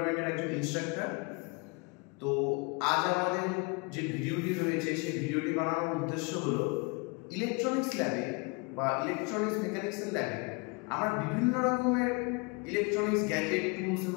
একজন ইনস্ট্রাক্টর। তো আজ আমাদের যে ভিডিওটি রয়েছে সেই ভিডিওটি বানানোর উদ্দেশ্য হলো ইলেকট্রনিক্স ল্যাবে বা ইলেকট্রনিক্স মেকানিক্সের ল্যাবে আমরা বিভিন্ন রকমের ইলেকট্রনিক্স গ্যাজেট, টুলস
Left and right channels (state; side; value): quieter; right; 30.2 dB